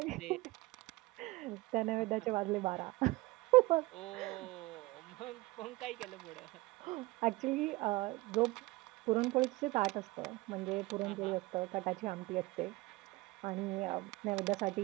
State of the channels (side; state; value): left; quieter; 21.4 dB